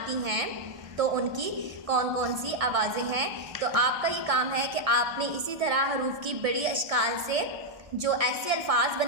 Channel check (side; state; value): left; late; 1.2 ms